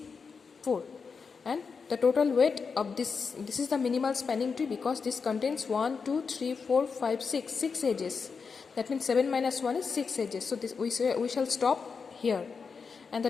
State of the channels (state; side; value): quieter; right; 5.4 dB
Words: 4. And the total weight of this is the minimal spanning tree, because this contains 1, 2, 3, 4, 5, 6 edges. That means 7 minus 1 is 6 edges. So this we shall stop here. and